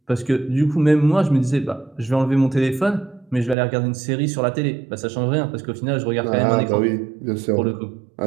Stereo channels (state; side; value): drops out; left; at 3.6 s